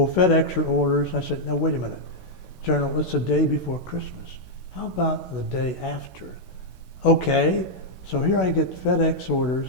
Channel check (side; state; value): right; late; 16 ms